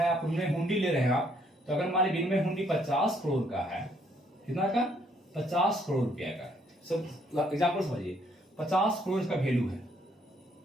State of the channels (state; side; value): normal; both; correlation 0.68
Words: आप विनिमय हुंडी ले रहे हैं आप, तो अगर मान लीजिए विनिमय हुंडी 50 करोड़ का है, कितना का? 50 करोड़ रुपया का। सब एग्जाम्पल समझिए, 50 करोड़ का वैल्यू है